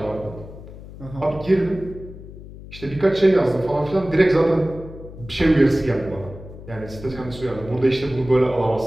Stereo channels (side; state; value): left; noise; hum, 15 dB below the sound